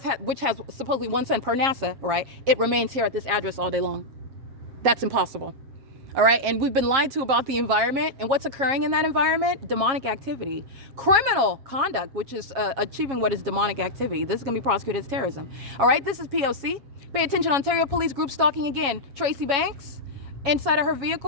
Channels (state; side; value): late; left; 7.3 ms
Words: which has supposedly one sun per NASA, right, it remains here at this address all day long. That's impossible. All right, and we've been lied to about the environment, and what's occurring in that environment? Demonic activity, criminal conduct, which is achieving what is demonic activity. This is going to be prosecuted as terrorism. All right, this is P.O.C. Pay attention, Ontario Police group stalking again. Tracy Banks inside of her